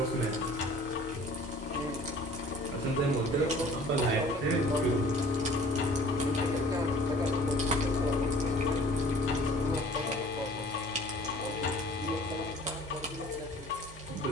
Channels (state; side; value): normal; both; correlation 0.50